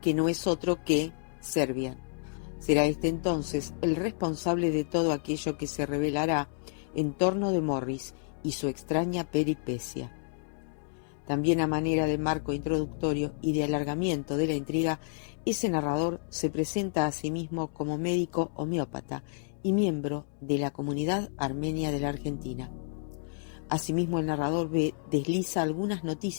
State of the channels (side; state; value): right; silent; digital silence